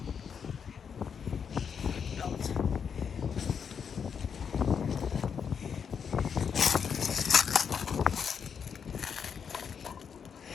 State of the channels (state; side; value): quieter; right; 6.9 dB